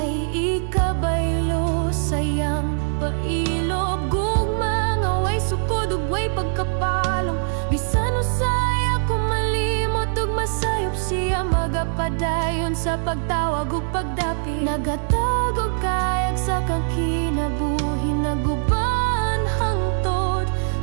ikabaylo sayang pailob. Gugma nga way sukod ug way pagkapalong, bisan usay ako malimot ug masayop siya magapadayon sa pagtawag ug pagdapi. Nagatag og kayag sa kang kinabuhi, naguban hangtod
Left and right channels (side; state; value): left; silent; 64 dB below the other